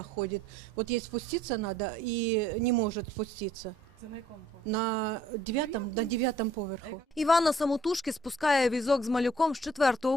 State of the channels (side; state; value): both; normal; correlation 0.60